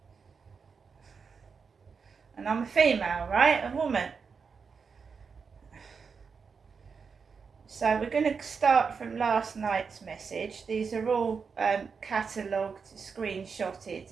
and I'm a female, right? A woman. So we're going to start from last night's message. These are all catalogued, screenshotted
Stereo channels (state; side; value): quieter; left; 5.6 dB